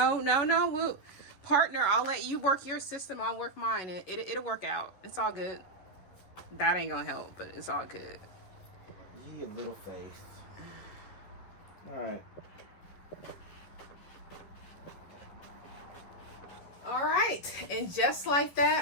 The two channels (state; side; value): late; right; 11 ms